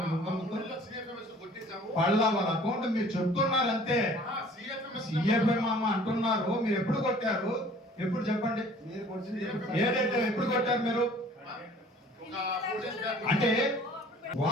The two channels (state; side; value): normal; both; correlation 0.51